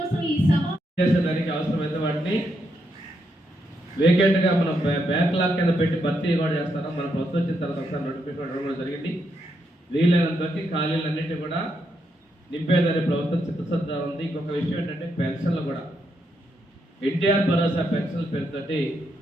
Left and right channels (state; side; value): normal; both; correlation 0.80